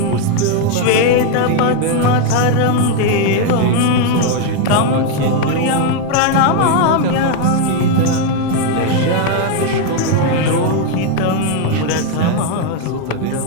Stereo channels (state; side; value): different; both; correlation 0.01